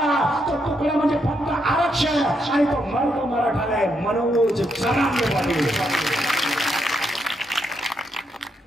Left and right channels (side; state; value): both; normal; correlation 0.79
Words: तो तुकडा म्हणजे फक्त आरक्षण. आणि तो मर्द मराठा आहे, मनोज जरांगे पाटील.